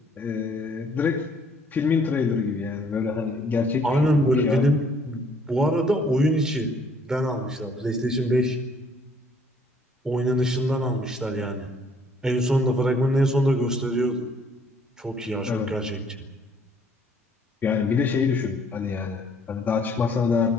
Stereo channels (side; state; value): both; normal; correlation 0.62